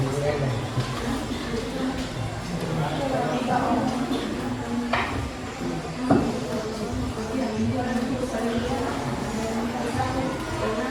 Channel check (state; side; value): identical; both; correlation 1.00